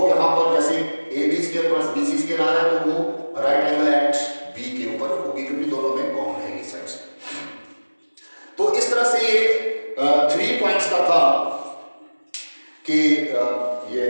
यहाँ पर जैसे A B square plus B C square आ रहा है तो वो राइट एंगल एट बी के ऊपर होगी क्योंकि दोनों में कॉमन है ये साइड्स। तो इस तरह से ये 3 पॉइंट्स का था कि ये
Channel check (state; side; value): inverted; both; correlation -1.00